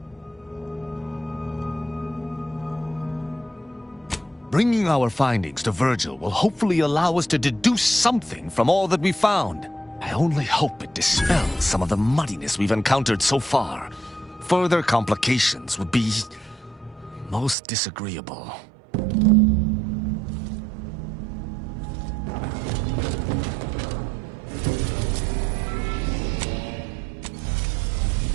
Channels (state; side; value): drops out; left; at 17.6 s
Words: Bringing our findings to Virgil will hopefully allow us to deduce something from all that we found. I only hope it dispels some of the muddiness we've encountered so far. Further complications would be most disagreeable.